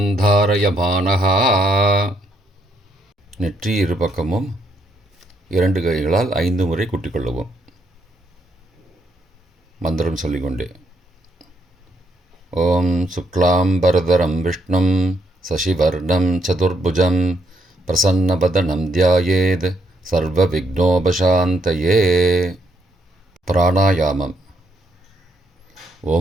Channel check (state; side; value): normal; both; correlation 0.74